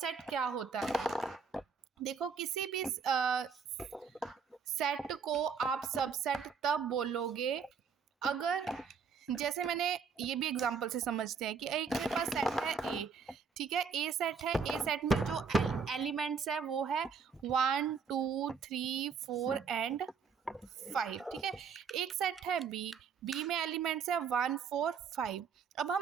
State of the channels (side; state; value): left; quieter; 6.0 dB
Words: क्या होता है, देखो किसी भी सेट को आप सबसेट तब बोलोगे अगर, जैसे मैंने ये भी एग्जांपल से समझते हैं कि एक मेरे पास सेट है ए, ठीक है, ए सेट है, ए सेट में जो एलिमेंट्स है वो है 1 2 3 4 एंड 5, ठीक है। एक सेट है बी में एलिमेंट्स है 1 4 5। अब